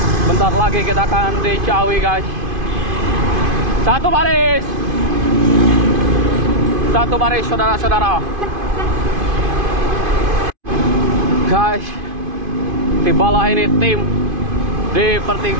Bentar lagi kita akan di Ciawi guys. Satu baris saudara-saudara. Guys, tibalah ini tim di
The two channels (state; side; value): late; left; 2.5 ms